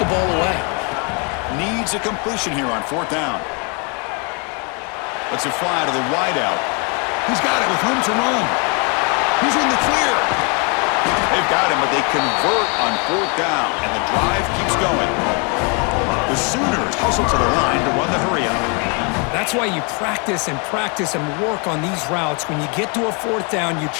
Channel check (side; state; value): right; quieter; 34.7 dB